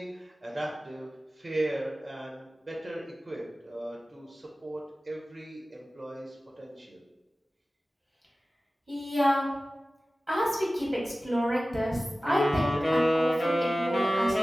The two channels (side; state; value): both; normal; correlation 0.96